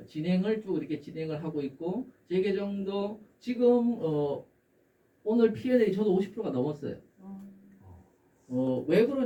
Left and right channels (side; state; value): both; identical; correlation 1.00